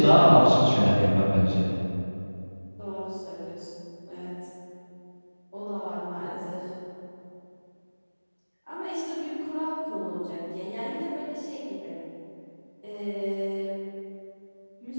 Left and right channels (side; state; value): both; inverted; correlation -1.00